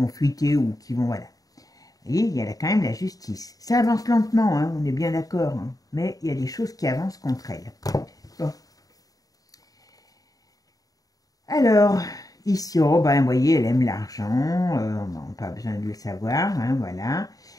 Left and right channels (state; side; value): late; right; 0.18 ms